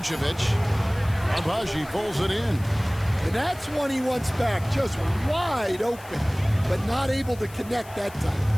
Abaji pulls it in. And that's one he wants back, just wide open, but not able to connect that time.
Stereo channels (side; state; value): left; noise; hiss, 21 dB below the sound